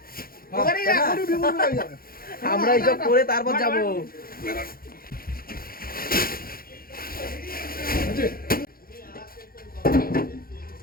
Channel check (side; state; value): right; late; 0.43 ms